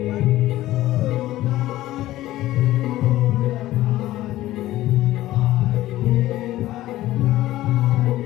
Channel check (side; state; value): right; quieter; 15.5 dB